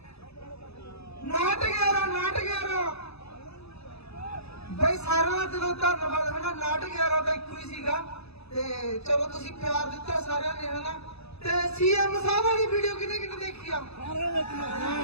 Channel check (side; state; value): right; late; 0.79 ms